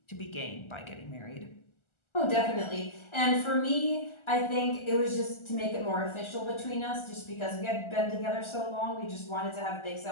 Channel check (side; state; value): right; late; 1.4 ms